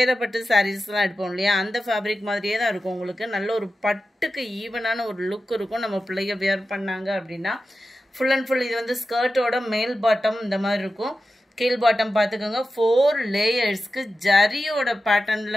சாரீஸ்லாம் எடுப்போம் இல்லையா, அந்த ஃபேப்ரிக் மாதிரியே தான் இருக்கும். உங்களுக்கு நல்ல ஒரு பட்டுக்கு ஈவனான ஒரு லுக் இருக்கும். நம்ம பிள்ளைய வியர் பண்ணாங்க அப்படின்னா ஃபுல் அண்ட் ஃபுல் இது வந்து ஸ்கர்ட்டோட மேல் பாட்டம் இந்த மாதிரி இருக்கும். கீழ் பாட்டம் பார்த்துக்கோங்க. 4 லேயர்ஸ்க்கு ஜரியோட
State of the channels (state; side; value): normal; both; correlation 0.92